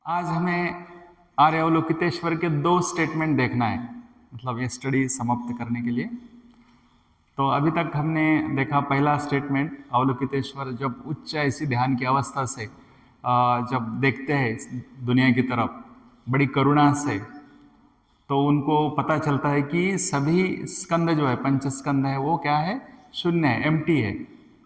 आज हमें आर्य अवलोकितेश्वर के दो स्टेटमेंट देखना है, मतलब ये स्टडी समाप्त करने के लिए। तो अभी तक हमने देखा पहला स्टेटमेंट, अवलोकितेश्वर जब उच्च ऐसी ध्यान की अवस्था से जब देखते हैं दुनिया की तरफ बड़ी करुणा से, तो उनको पता चलता है कि सभी स्कंद जो है, पंच स्कंद है, वो क्या है, शून्य है, एम्प्टी है।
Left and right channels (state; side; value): identical; both; correlation 1.00